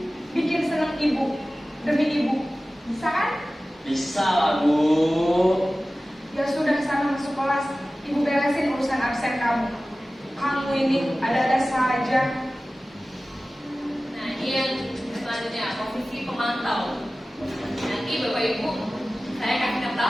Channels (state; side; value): normal; both; correlation 0.96